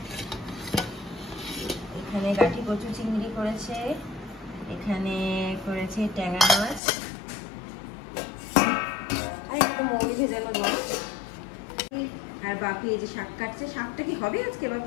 এখানে গাঠি কচু চিংড়ি করেছে, এখানে করেছে ট্যাংরা মাছ, আর একটু মৌরি ভেজানো জল। আর বাপি এই যে শাক কাটছে। শাকটা কি হবে আজকে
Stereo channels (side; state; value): right; drops out; at 6.8 s